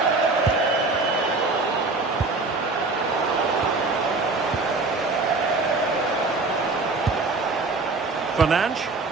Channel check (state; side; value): quieter; left; 3.6 dB